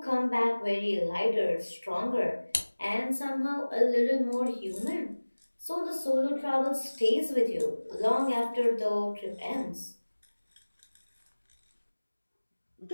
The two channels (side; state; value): both; inverted; correlation -1.00